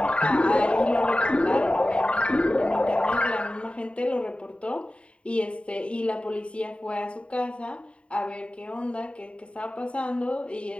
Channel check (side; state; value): right; late; 0.060 ms